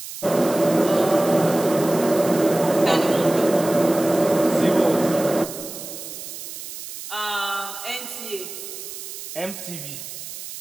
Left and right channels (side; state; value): right; noise; hiss, 11 dB below the sound